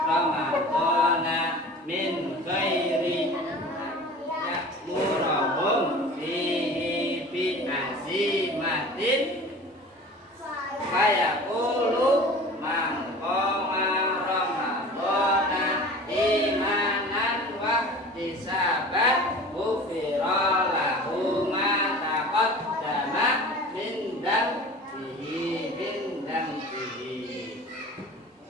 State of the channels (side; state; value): both; normal; correlation 0.40